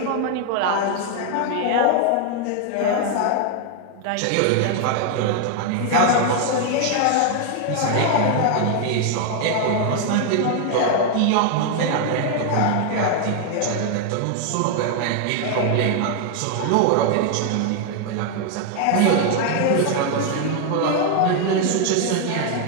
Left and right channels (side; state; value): both; different; correlation 0.00